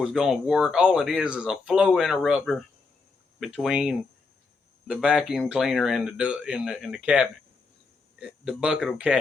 going to work. All it is a flow interrupter between the vacuum cleaner and the cabinet. The bucket will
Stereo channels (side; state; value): right; quieter; 4.2 dB